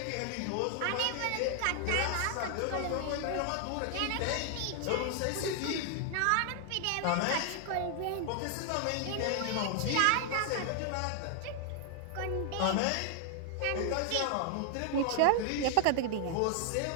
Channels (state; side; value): different; both; correlation 0.00